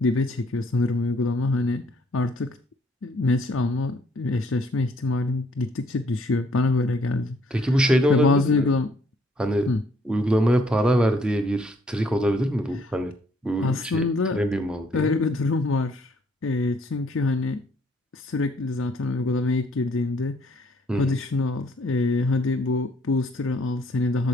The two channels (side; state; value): both; normal; correlation 0.64